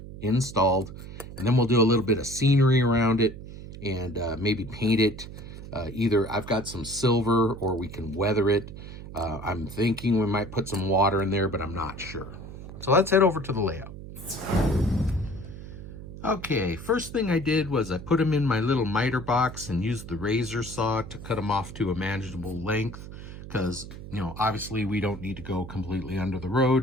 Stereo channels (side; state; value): right; noise; hum, 12 dB below the sound